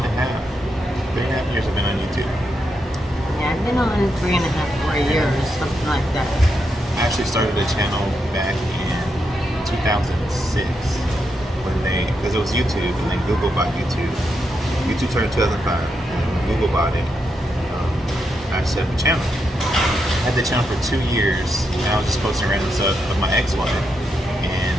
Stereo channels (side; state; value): both; normal; correlation 0.83